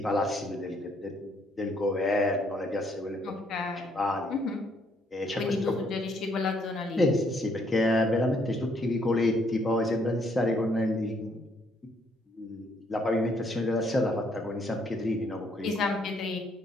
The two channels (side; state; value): both; normal; correlation 0.69